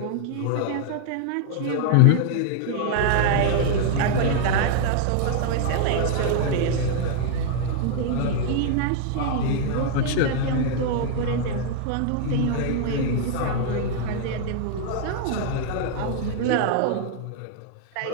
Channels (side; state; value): both; different; correlation 0.00